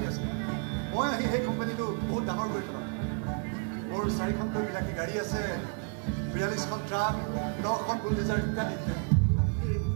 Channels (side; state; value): left; quieter; 39.4 dB